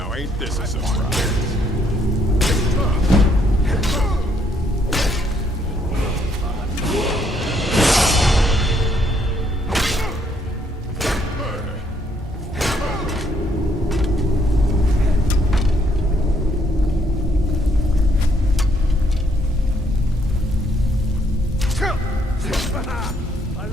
Ain't this a surprise? I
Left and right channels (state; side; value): normal; both; correlation 0.70